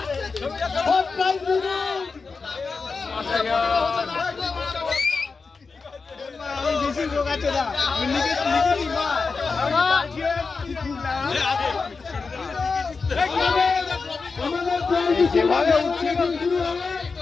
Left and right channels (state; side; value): quieter; right; 4.6 dB